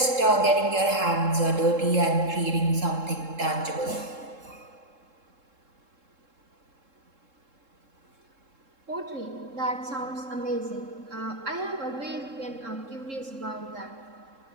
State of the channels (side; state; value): left; late; 3.7 ms